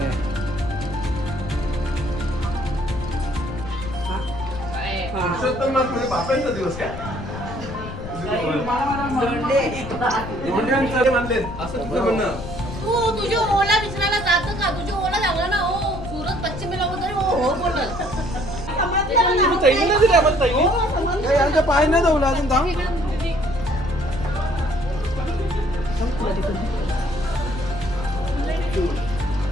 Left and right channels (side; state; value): left; noise; rumble, 10 dB below the sound